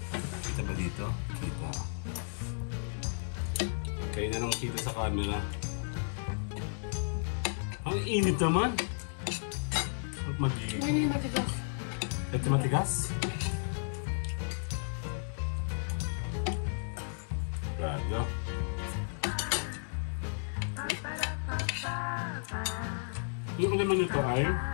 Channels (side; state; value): right; silent; digital silence